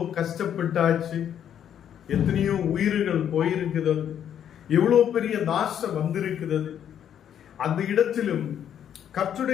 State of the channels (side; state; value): right; quieter; 9.5 dB